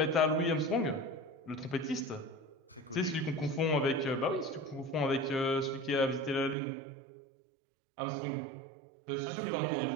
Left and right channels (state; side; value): drops out; left; at 6.6 s